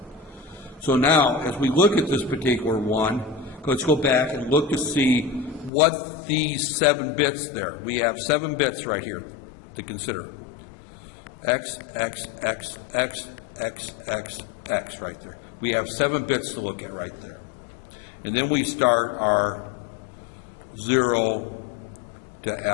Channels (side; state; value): right; drops out; at 5.7 s